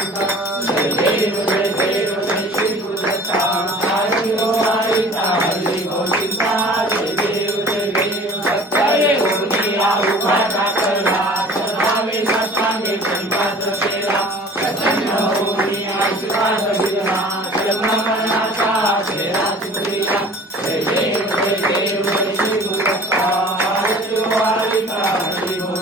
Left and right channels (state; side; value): normal; both; correlation 0.45